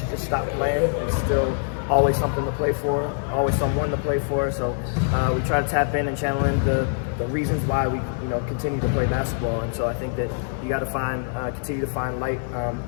just stop playing. It's still always something to play for, always someone to play for. So we try to tap in and channel in the reasons why we continue to play basketball. And so I think that you got to continue to find light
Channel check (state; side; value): silent; right; 60 dB below the other